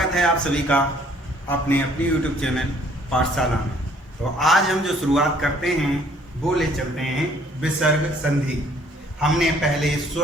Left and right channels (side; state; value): both; normal; correlation 0.60